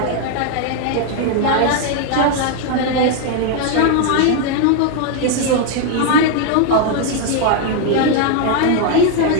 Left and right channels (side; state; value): both; different; correlation 0.01